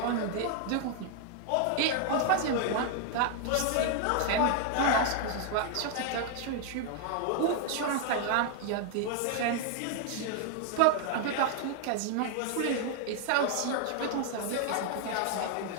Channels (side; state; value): both; different; correlation 0.00